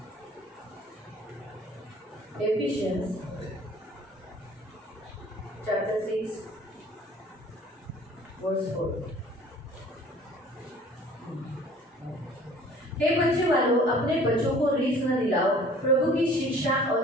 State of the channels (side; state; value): both; normal; correlation 0.51